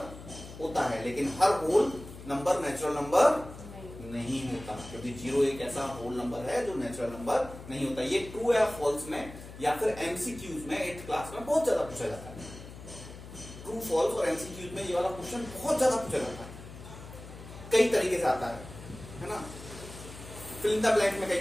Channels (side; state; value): left; noise; hum, 15 dB below the sound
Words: होता है, लेकिन हर होल नंबर नेचुरल नंबर नहीं होता, क्योंकि जीरो एक ऐसा होल नंबर है जो नेचुरल नंबर नहीं होता। ये ट्रू या फॉल्स में या फिर एमसीक्यूज में 8th क्लास में बहुत ज्यादा पूछा जाता है। ट्रू फॉल्स और एमसीक्यूज में ये वाला क्वेश्चन बहुत ज्यादा पूछा जाता है, कई तरीके से आता है ना। फिल इन द ब्लैंक में कई